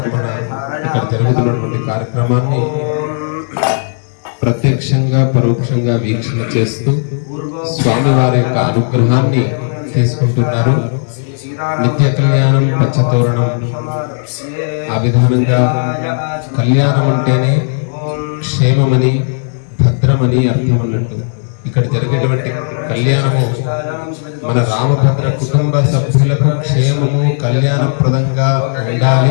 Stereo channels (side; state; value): right; silent; digital silence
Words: ఇక్కడ జరుగుతున్నటువంటి కార్యక్రమాన్ని ప్రత్యక్షంగా పరోక్షంగా వీక్షణ చేస్తూ స్వామివారి యొక్క అనుగ్రహాన్ని తీసుకుంటున్నారు. నిత్య కళ్యాణం పచ్చతోరణం ఆ విధానంగా కళ్యాణం అంటేనే క్షేమమని భద్రమని అర్థం అన్నట్టు ఇక్కడ జరిగేటువంటి కళ్యాణము మన రామభద్ర కుటుంబ సభ్యులకు క్షేమము కళ్యాణప్రదంగా